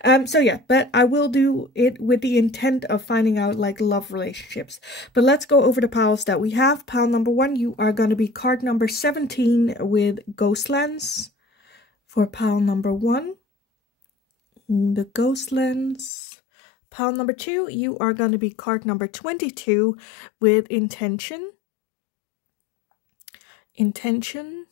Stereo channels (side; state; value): right; drops out; at 16.1 s